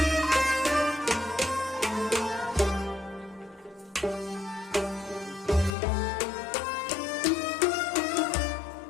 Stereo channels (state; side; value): drops out; right; at 5.8 s